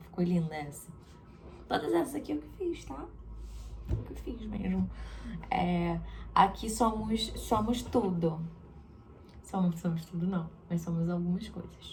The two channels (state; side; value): identical; both; correlation 1.00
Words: Ficou linda essa. Todas essas aqui eu que fiz, tá? Eu que fiz mesmo. Aqui somos tudo. Somos tudo não, mas somos algumas